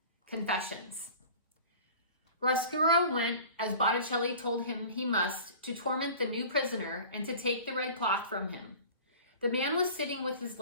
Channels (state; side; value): inverted; both; correlation -0.42